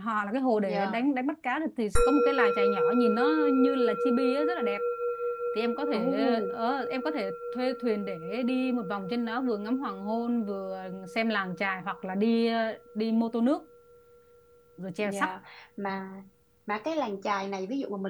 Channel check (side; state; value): both; identical; correlation 1.00